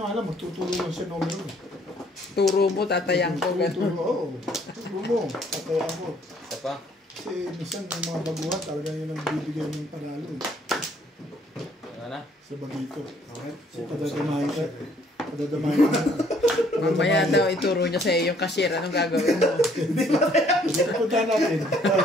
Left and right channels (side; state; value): both; normal; correlation 0.63